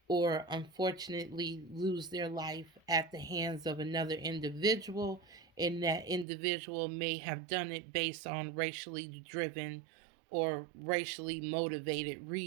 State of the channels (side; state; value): left; drops out; at 6.2 s